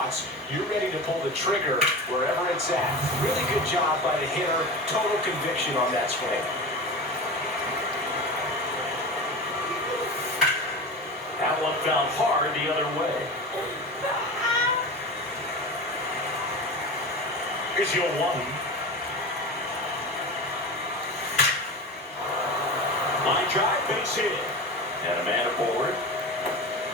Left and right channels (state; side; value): normal; both; correlation 0.28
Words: you're ready to pull the trigger wherever it's at. Really good job by the hitter. Total conviction on that swing. That one found hard the other way. Here's your one. Line drive, base hit. And a man aboard.